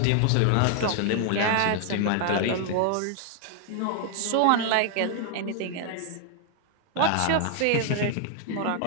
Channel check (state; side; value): different; both; correlation 0.00